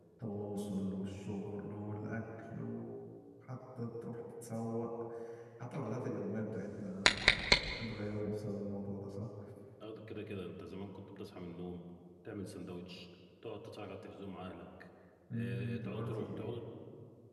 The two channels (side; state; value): both; identical; correlation 1.00